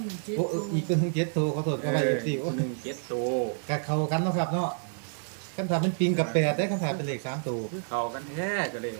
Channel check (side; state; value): left; silent; digital silence